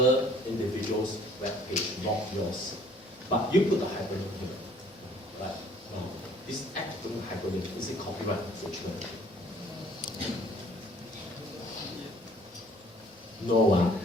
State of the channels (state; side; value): normal; both; correlation 0.57